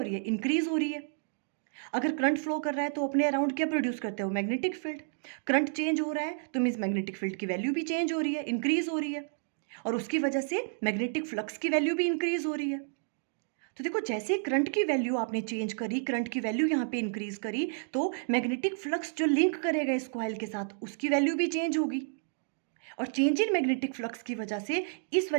रही है? इंक्रीज हो रही है। अगर करंट फ्लो कर रहा है तो अपने अराउंड क्या प्रोड्यूस करते हो? Magnetic field. करंट चेंज हो रहा है तो मीन्स मैग्नेटिक फील्ड की वैल्यू भी चेंज हो रही है, इंक्रीज हो रही है, और उसकी वजह से मैग्नेटिक फ्लक्स की वैल्यू भी इंक्रीज हो रही है। तो देखो, जैसे करंट की वैल्यू आपने चेंज करी, करंट की वैल्यू यहाँ पे इंक्रीज करी, तो मैग्नेटिक फ्लक्स जो लिंक करेगा इस कॉइल के साथ, उसकी वैल्यू भी चेंज होगी, और चेंज इन मैग्नेटिक फ्लक्स की वजह से इस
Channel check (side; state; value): left; silent; digital silence